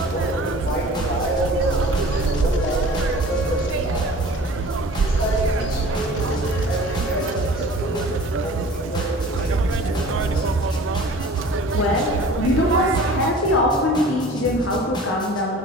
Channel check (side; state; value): both; normal; correlation 0.44